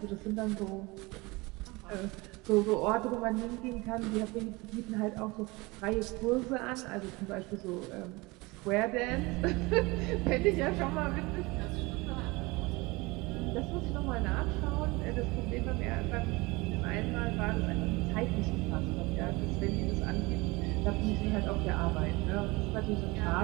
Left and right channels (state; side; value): quieter; left; 23.9 dB